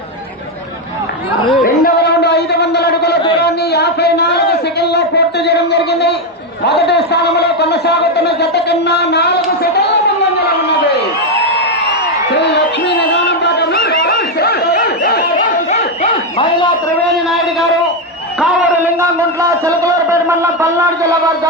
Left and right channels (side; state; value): both; normal; correlation 0.05